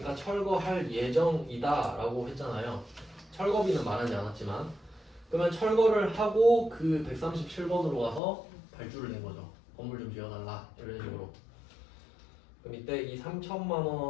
철거할 예정이다 라고 했잖아요. 철거비는 말하지 않았지만 그러면 철거를 하고 그 137번으로 가서 발주를 낸 거죠. 건물 좀 지어달라 이런 식으로. 그럼 이때 이 3천만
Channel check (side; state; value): right; drops out; at 8.2 s